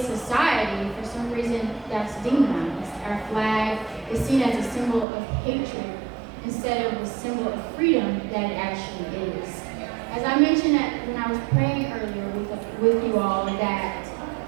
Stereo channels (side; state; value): left; drops out; at 5.1 s